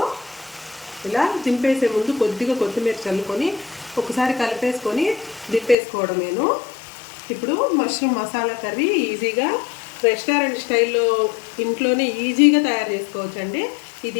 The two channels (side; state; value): right; drops out; at 5.8 s